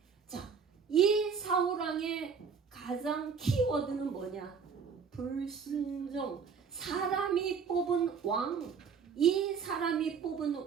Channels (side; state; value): left; quieter; 6.2 dB